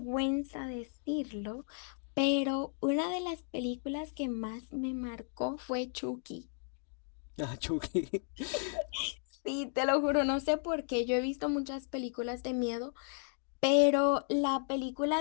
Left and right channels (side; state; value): right; silent; 55 dB below the other